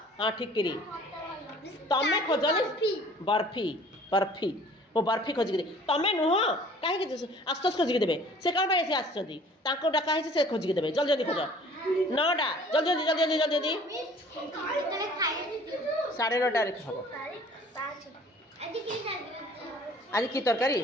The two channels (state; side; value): normal; both; correlation 0.51